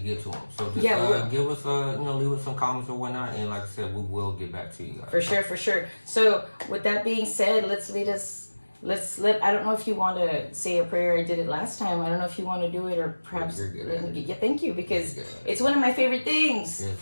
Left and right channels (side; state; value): both; inverted; correlation -1.00